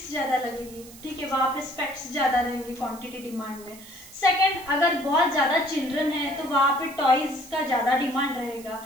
ज्यादा लगेगी। ठीक है, वहां पे स्पेक्ट्स ज्यादा रहेंगे क्वांटिटी डिमांड में। सेकंड, अगर बहुत ज्यादा चिल्ड्रन है तो वहां पे टॉयज का ज्यादा डिमांड रहेगा,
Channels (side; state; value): right; noise; hiss, 19 dB below the sound